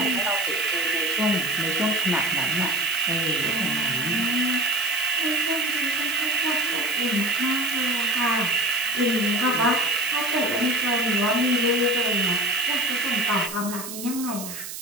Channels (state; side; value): noise; right; hiss, 9 dB below the sound